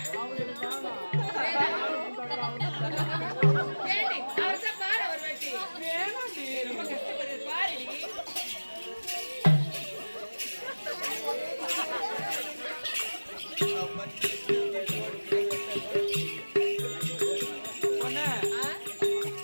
அவர்தான் பாரு அவர் வேட்டி ரொம்ப கஷ்டப்படுறது பாரு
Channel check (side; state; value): both; inverted; correlation -1.00